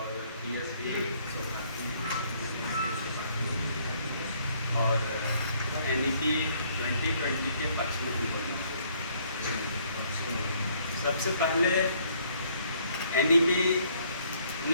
और NEP 2020 के पक्ष में भी बोलना। सबसे पहले NEP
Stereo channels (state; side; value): inverted; both; correlation -0.65